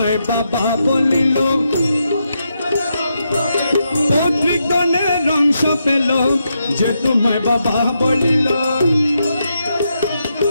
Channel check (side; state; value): both; inverted; correlation -0.83